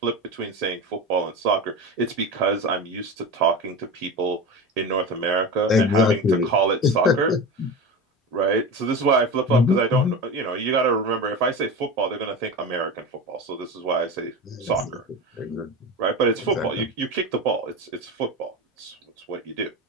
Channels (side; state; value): both; normal; correlation 0.26